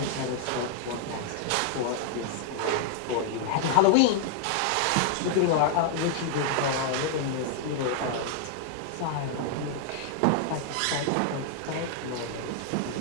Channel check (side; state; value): both; different; correlation 0.00